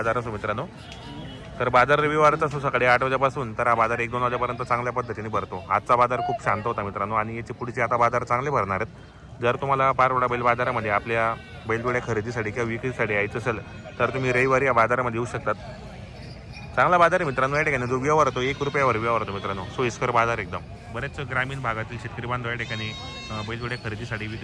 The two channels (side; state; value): both; identical; correlation 1.00